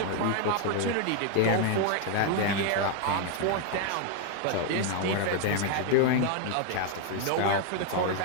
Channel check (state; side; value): different; both; correlation 0.00